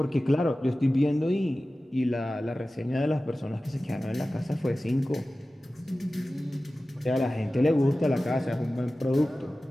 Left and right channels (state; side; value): normal; both; correlation 0.96